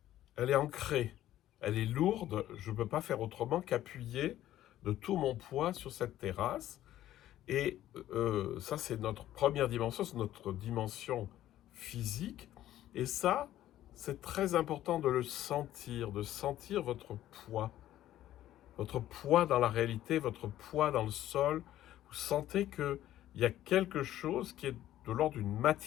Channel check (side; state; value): right; quieter; 13.2 dB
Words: elle est ancrée, elle est lourde, je ne peux pas faire autrement qu'appuyer de tout mon poids sur cette terrasse. Et ça, c'est notre première dimension, c'est notre dimension physique. Et ça, c'est très important de sentir votre poids dans la réalité, votre poids dans le sol. Vous sentez qu'il y a quelque chose qui est de l'ordre d'une